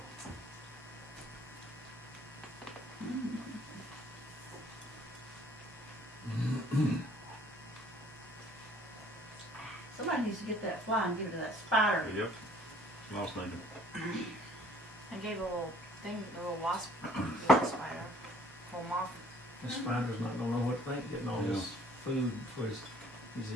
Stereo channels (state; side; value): normal; both; correlation 0.57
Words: Somebody needs to get that fly and give it to that spider. Yep. Small snake. I gave a little thing, a little wasp, little spider. Pull them off. The spider's not gonna know what to think, getting all this food for his,